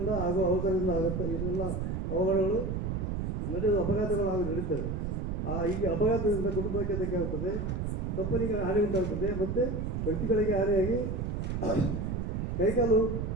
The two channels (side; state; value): right; noise; rumble, 2 dB below the sound